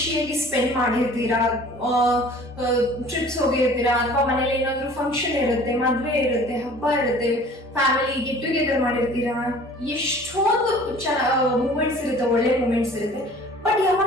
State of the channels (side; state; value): both; normal; correlation 0.48